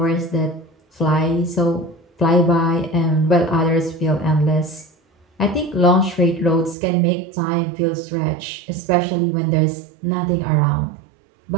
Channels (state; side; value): drops out; left; at 6.8 s